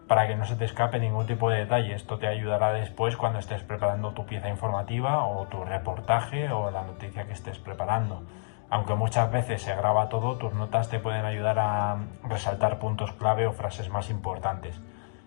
para que no se te escape ningún tipo de detalle. Esto te ayudará después cuando estés preparando tu pieza informativa o tu reportaje o la noticia que estés preparando. Aunque muchas veces se graba todo, tus notas te pueden ayudar a resaltar puntos clave o frases más importantes.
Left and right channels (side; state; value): right; silent; digital silence